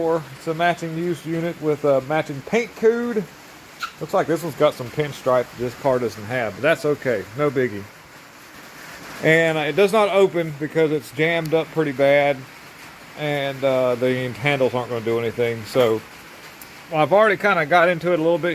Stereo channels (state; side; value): identical; both; correlation 1.00